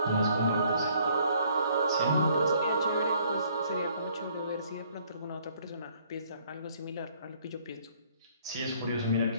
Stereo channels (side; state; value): both; inverted; correlation -0.63